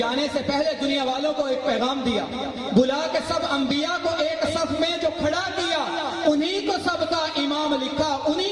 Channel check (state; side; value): identical; both; correlation 1.00